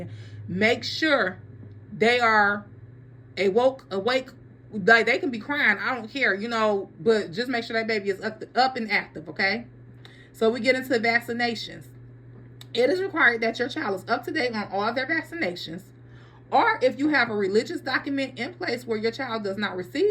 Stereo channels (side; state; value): both; identical; correlation 1.00